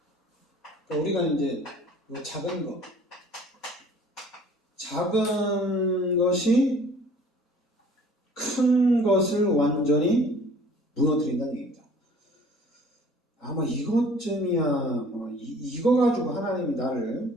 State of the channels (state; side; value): normal; both; correlation 0.51